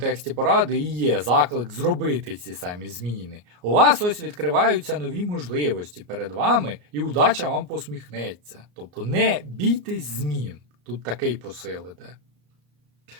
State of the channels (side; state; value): left; late; 34 ms